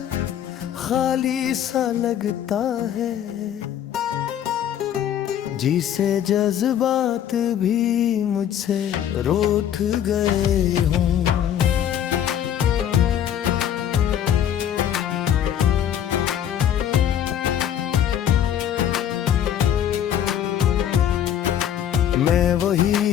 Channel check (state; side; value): quieter; right; 10.0 dB